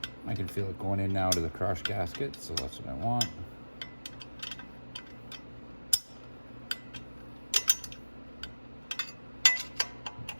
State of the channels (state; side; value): inverted; both; correlation -1.00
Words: I can feel it going in now to the crush gasket, so that's what I want.